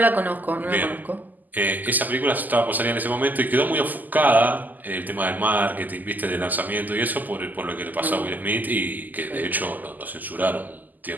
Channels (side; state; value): left; late; 0.084 ms